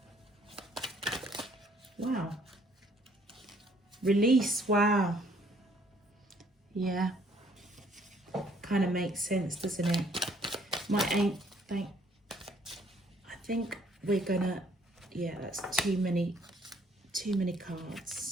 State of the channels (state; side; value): normal; both; correlation 0.63